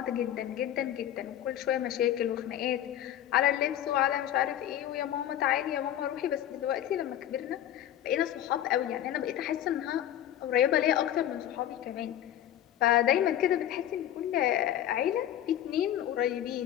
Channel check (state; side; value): quieter; right; 11.6 dB